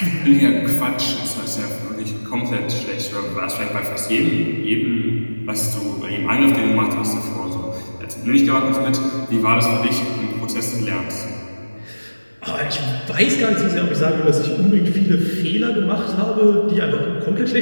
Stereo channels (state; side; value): inverted; both; correlation -1.00